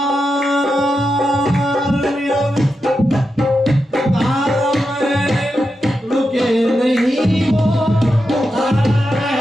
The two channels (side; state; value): both; normal; correlation 0.88